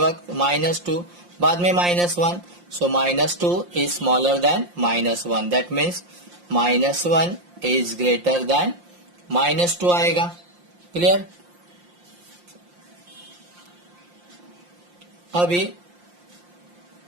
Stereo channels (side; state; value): left; late; 5.7 ms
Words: -2, बाद में -1. सो -2 is smaller then -1. That means -1 is greater then -2 आएगा. क्लियर? अभी